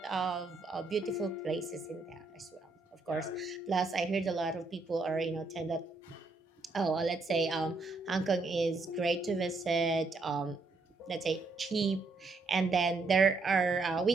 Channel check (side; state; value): left; quieter; 3.6 dB